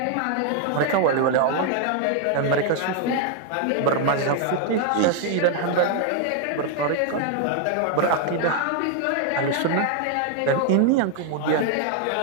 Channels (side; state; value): both; different; correlation 0.01